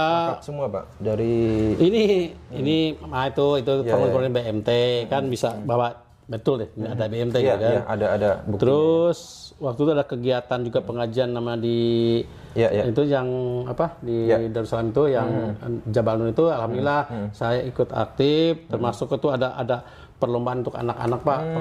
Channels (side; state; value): both; identical; correlation 1.00